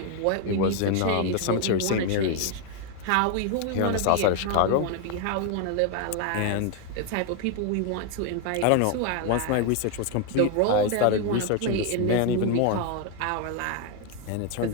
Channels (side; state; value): both; different; correlation 0.01